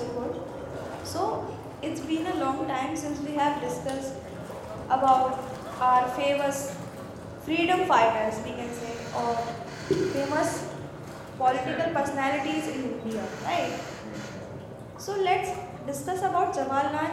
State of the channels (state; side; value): identical; both; correlation 1.00